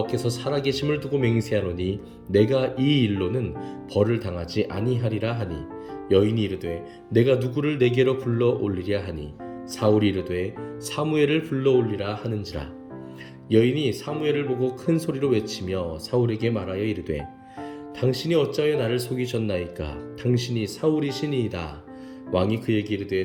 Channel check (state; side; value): identical; both; correlation 1.00